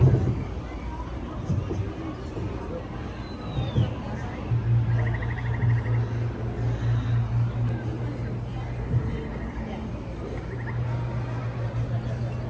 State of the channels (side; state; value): both; identical; correlation 1.00